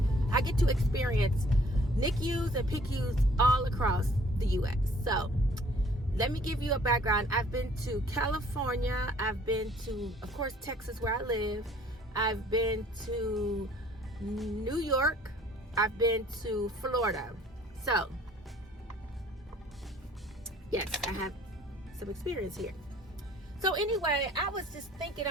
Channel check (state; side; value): normal; both; correlation 0.56